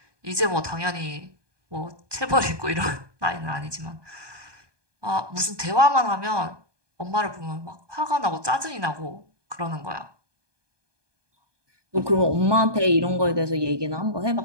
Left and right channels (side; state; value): left; late; 1.2 ms